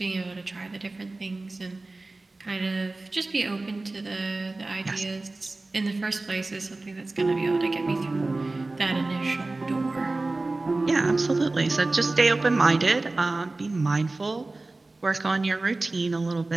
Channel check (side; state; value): left; quieter; 3.1 dB